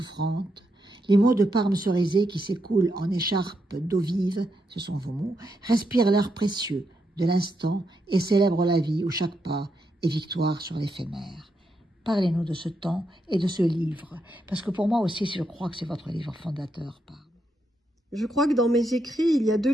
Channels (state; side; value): normal; both; correlation 0.81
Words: Les mots de Parme Cerisay qui s'écoulent en écharpe d'eau vive, ce sont vos mots, respirent l'air précieux de l'instant et célèbrent la vie où chaque pas est victoire sur l'éphémère. » Parlez-nous de ce temps et de ce livre, parce que pour moi aussi, je crois que c'est votre livre fondateur, Parme. Je crois que dans mes écrits, il y a 2